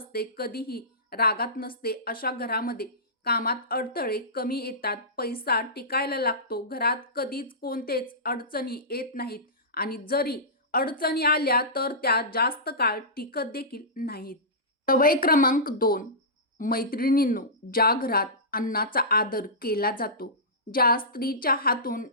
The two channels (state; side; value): normal; both; correlation -0.18